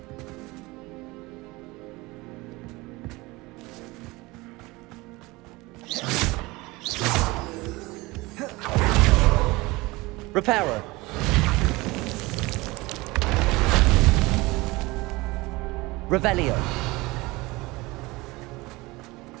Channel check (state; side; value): quieter; left; 22.1 dB